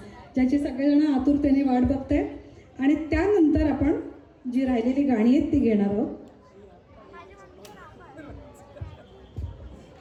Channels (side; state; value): both; identical; correlation 1.00